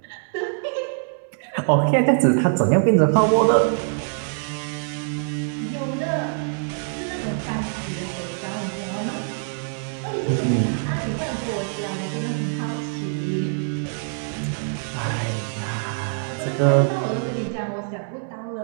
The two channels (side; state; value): left; silent; 63 dB below the other